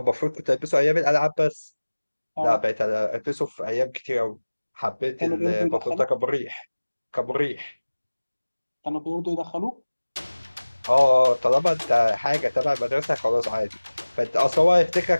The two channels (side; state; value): both; inverted; correlation -1.00